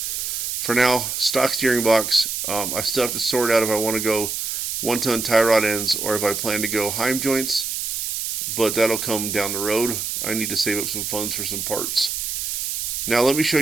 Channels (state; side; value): noise; right; hiss, 3 dB below the sound